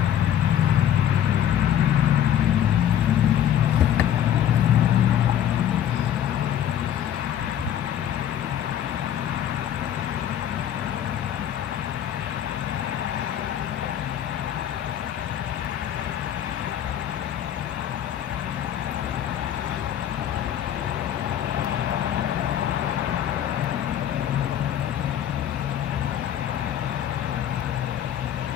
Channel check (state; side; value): quieter; right; 10.3 dB